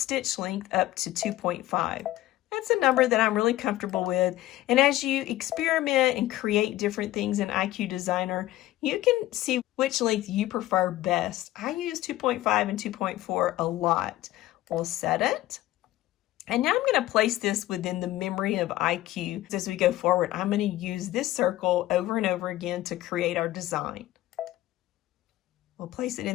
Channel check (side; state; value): right; quieter; 15.7 dB